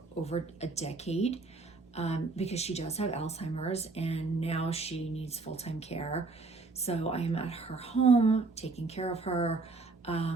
over a decade, because she does have Alzheimer's and now she needs full-time care. So I am at her home taking care of her.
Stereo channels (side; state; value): left; quieter; 3.8 dB